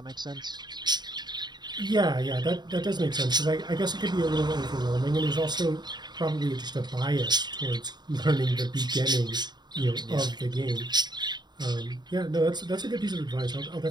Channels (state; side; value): late; left; 0.21 ms